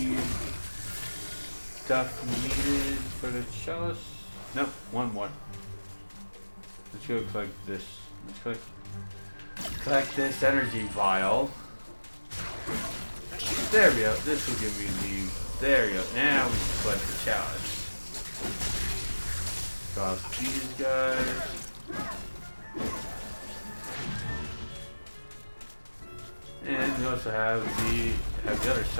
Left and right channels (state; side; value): inverted; both; correlation -1.00